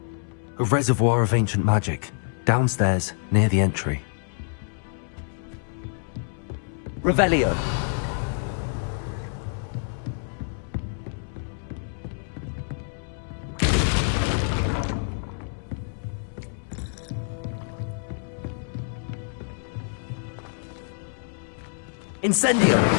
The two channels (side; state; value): right; silent; 60 dB below the other